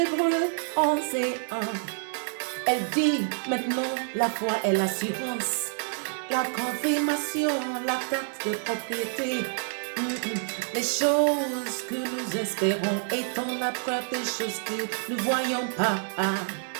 11 et 1. Elle dit maintenant la foi est l'assurance, la confirmation, la carte de propriété. Les choses que nous espérons étant la preuve des choses que nous ne voyons pas.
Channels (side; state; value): left; silent; 60 dB below the other